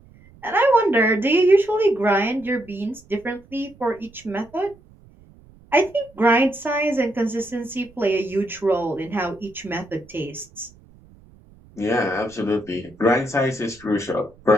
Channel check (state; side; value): noise; right; rumble, 26 dB below the sound